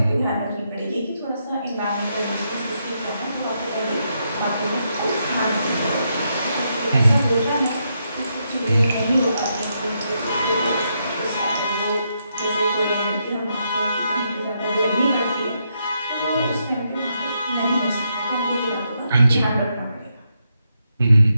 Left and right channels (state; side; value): inverted; both; correlation -0.80